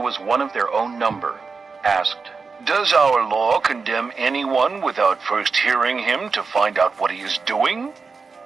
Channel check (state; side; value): quieter; left; 4.7 dB